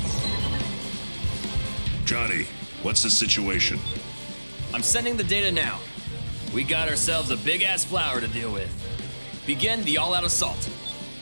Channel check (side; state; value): both; inverted; correlation -1.00